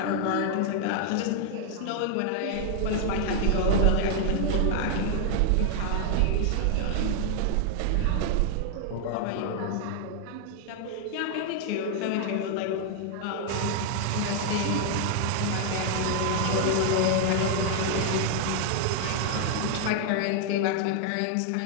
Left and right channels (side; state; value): both; different; correlation 0.00